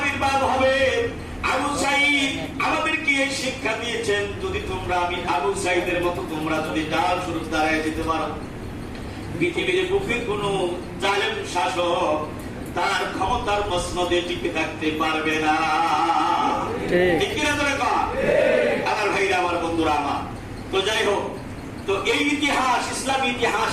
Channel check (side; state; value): both; identical; correlation 1.00